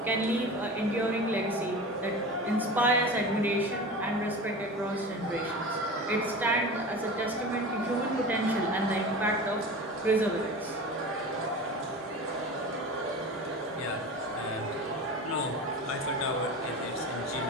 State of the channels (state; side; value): normal; both; correlation 0.32